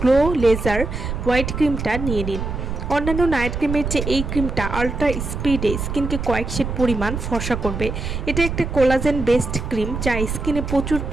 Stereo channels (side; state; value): right; noise; rumble, 4 dB below the sound